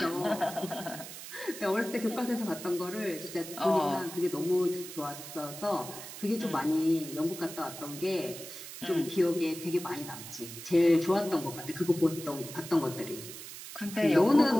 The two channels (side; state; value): right; noise; hiss, 12 dB below the sound